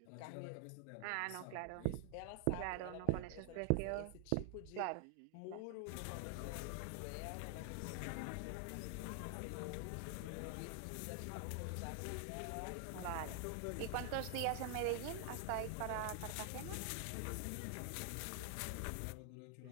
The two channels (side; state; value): both; different; correlation 0.00